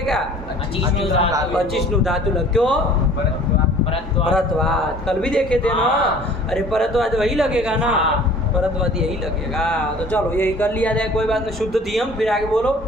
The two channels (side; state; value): both; normal; correlation 0.49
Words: अचिष्णु धातु। अचिष्णु धातु लग, क्यों? परत्वा। परत्वाद, कल भी देखे थे ना। हाँ। अरे परत्वाद वही लगेगा ना, हाँ। परत्वाद यही लगेगा। तो चलो यही कर लिया जाए, कोई बात नहीं। शुद्ध दियम, फिर आगे बोलो।